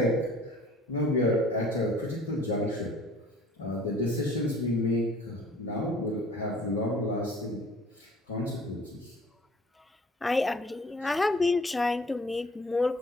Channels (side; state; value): both; normal; correlation 0.51